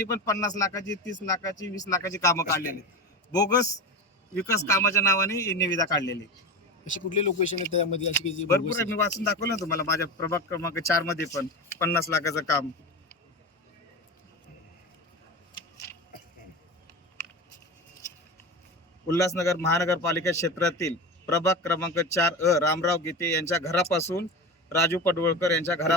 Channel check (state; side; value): normal; both; correlation 0.25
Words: पण 50 लाखाची 30 लाखाची 20 लाखाची कामं काढलेली आहेत. बोगस विकास कामाच्या नावाने ही निविदा काढलेली आहे. अशी कुठले लोकेशन आहे त्यामध्ये अशी की जी भरपूर बोगस आहे, मी वाचून दाखवलं ना तुम्हाला माझ्या प्रभाग क्रमांक 4 मध्ये पण 50 लाखाचं काम. उल्हासनगर महानगरपालिका क्षेत्रातील प्रभाग क्रमांक 4 रामराव गीते यांच्या घरापासून राजू पडवळकर यांच्या